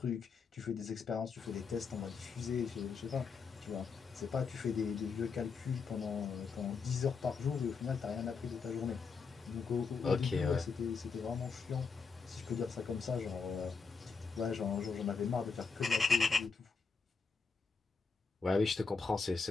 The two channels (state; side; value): quieter; right; 5.0 dB